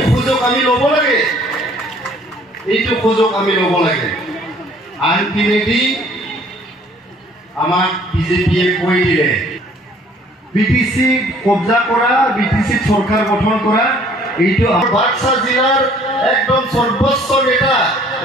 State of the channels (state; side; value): normal; both; correlation 0.57